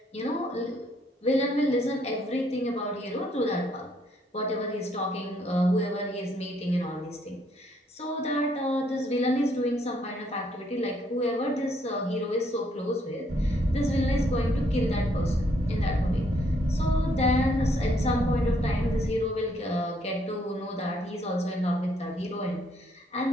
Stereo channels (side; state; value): both; normal; correlation 0.69